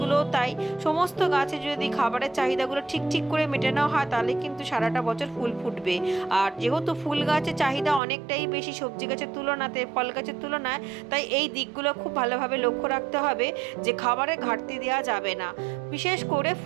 তাই। সমস্ত গাছে যদি খাবারের চাহিদাগুলো ঠিক ঠিক করে মেটানো হয়, তাহলে কিন্তু সারাটা বছর ফুল ফুটবে। আর যেহেতু ফুল গাছের চাহিদা অনেকটাই বেশি সবজি গাছের তুলনাতে, ফল গাছের তুলনায়, তাই এই দিকগুলো খুব ভালোভাবে লক্ষ্য রাখতে হবে যে খাবারের ঘাটতি দেওয়া যাবে না। বিশেষ করে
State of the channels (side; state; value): left; drops out; at 8.0 s